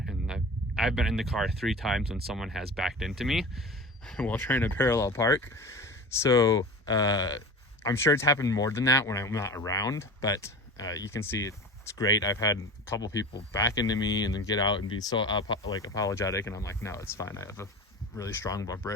and I've been in the car 3 times when someone has backed into me while trying to parallel park. So I'm sure it's happened more than that when I'm not around, but you can see it's great. I've had a couple people back into me and then get out and be so apologetic, and I'm like, no, it's fine. I have a really strong bumper.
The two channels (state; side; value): normal; both; correlation 0.34